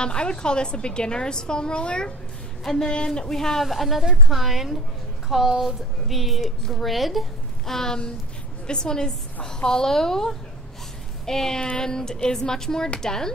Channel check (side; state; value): both; normal; correlation 0.40